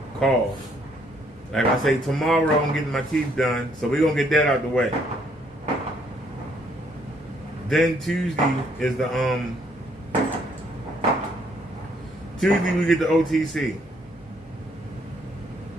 call. Like I say, tomorrow I'm getting my teeth done, so we're going to get that out the way. Then Tuesday is the, Tuesday we get the OTC.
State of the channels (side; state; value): both; normal; correlation 0.67